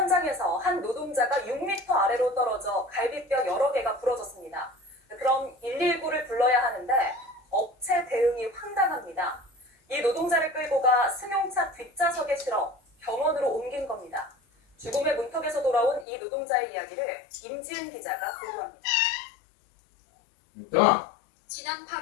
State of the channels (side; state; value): right; drops out; at 16.1 s